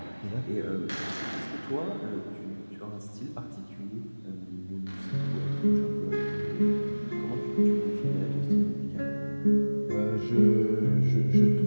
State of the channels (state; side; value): inverted; both; correlation -1.00